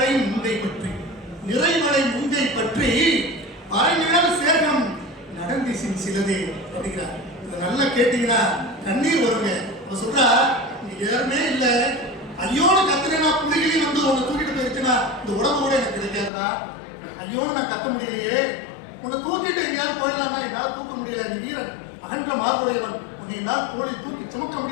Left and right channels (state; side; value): drops out; right; at 16.3 s